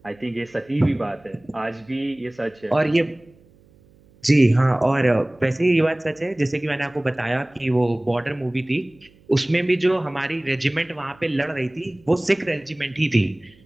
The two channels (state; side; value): noise; right; hum, 29 dB below the sound